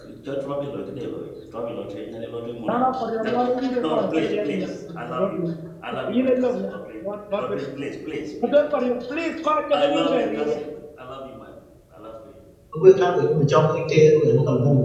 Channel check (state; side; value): identical; both; correlation 1.00